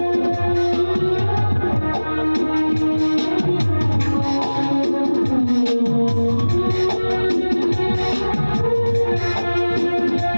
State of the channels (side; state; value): both; inverted; correlation -1.00